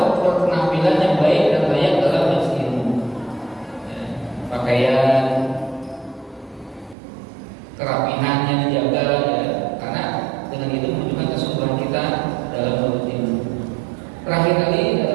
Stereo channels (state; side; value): drops out; left; at 7.0 s